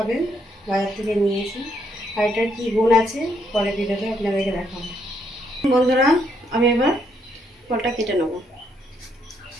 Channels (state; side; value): normal; both; correlation 0.74